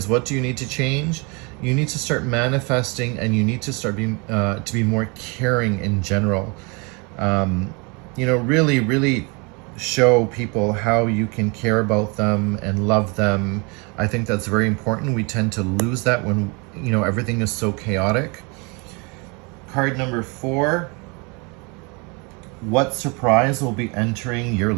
what do you need to change? You need to start manifesting, and you need to start being to be more caring in general. Really show people how you can care about them and love them. I think that's very important. We tend to lose that when everything is so chaotic. Card number 4. What surprise will be entering your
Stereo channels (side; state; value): left; quieter; 30.5 dB